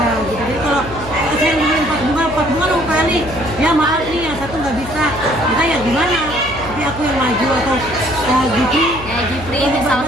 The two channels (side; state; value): left; noise; hum, 13 dB below the sound